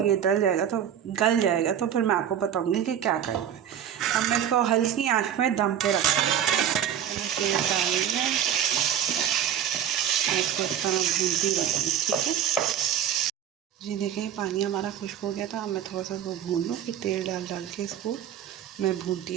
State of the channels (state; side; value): quieter; left; 9.7 dB